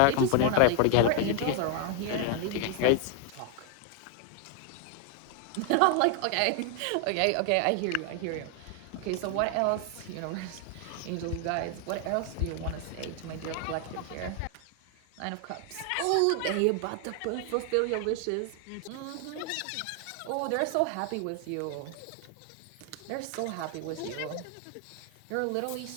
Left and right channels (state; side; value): different; both; correlation 0.00